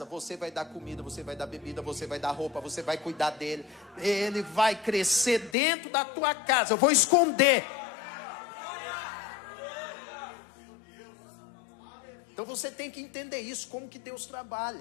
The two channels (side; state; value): right; drops out; at 5.6 s